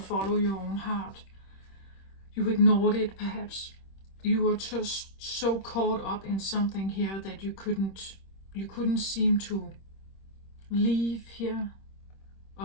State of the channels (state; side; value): late; right; 26 ms